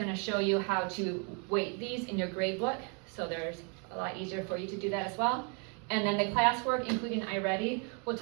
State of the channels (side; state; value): left; quieter; 37.4 dB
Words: to show you how to weight these in your grade book. So there's a lot easier for you to do that as well. And then the classwork, including iReady. We'll